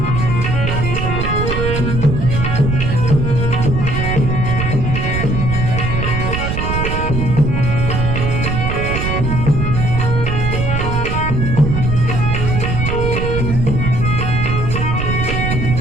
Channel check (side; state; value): right; noise; rumble, 1 dB below the sound